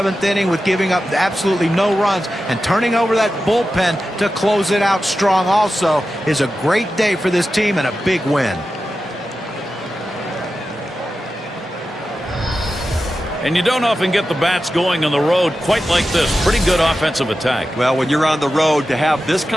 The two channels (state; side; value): normal; both; correlation 0.92